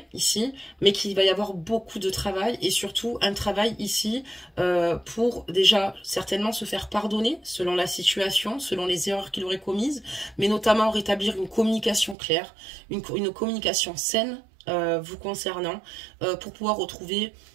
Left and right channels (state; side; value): drops out; left; at 12.2 s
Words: ici, mais qu'il va y avoir beaucoup de travail et surtout un travail ici pour déjà certainement se faire pardonner selon la situation, selon les erreurs qu'il aurait commises, mais notamment rétablir une communication claire, une communication saine vous concernant pour pouvoir retrouver,